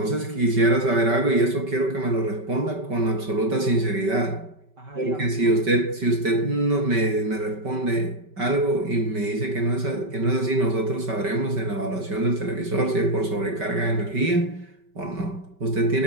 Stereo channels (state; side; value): late; left; 5.2 ms